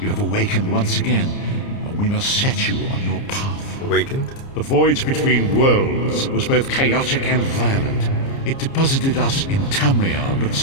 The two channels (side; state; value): right; late; 30 ms